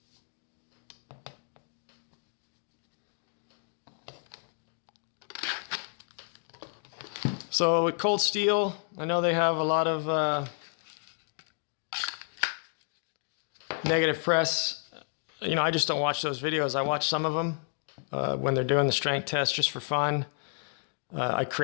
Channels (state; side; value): silent; right; 57 dB below the other